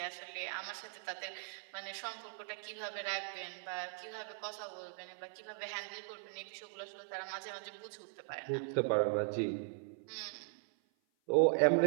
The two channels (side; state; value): left; silent; 51 dB below the other